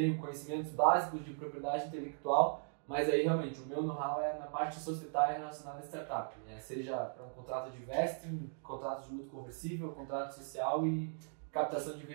conhecimentos básicos de propriedade intelectual, mas aí realmente o meu know-how é na parte societária relacionada a startup, né? Seja para um contrato de vesting, contrato de luto conversível, contrato social e captação de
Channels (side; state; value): left; silent; digital silence